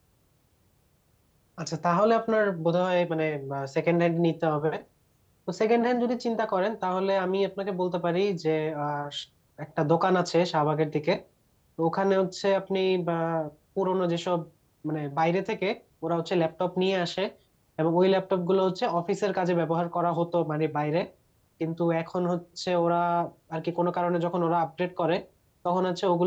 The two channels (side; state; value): both; identical; correlation 1.00